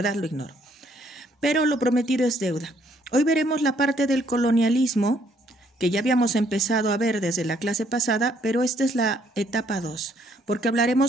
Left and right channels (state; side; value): normal; both; correlation 0.68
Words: lo ignoro. Pero lo prometido es deuda. Hoy veremos la parte del colonialismo que ya habíamos empezado a ver desde la clase pasada, pero esta es la etapa 2, porque